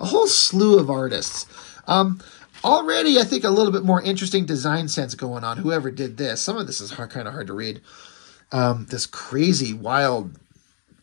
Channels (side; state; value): right; silent; 64 dB below the other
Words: whole slew of artists. Already, I think, a little bit more interesting design sense going on, whoever did this. Some of this is kind of hard to read. This crazy, wild